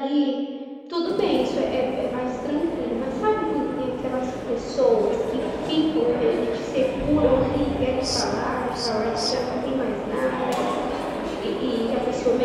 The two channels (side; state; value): both; identical; correlation 1.00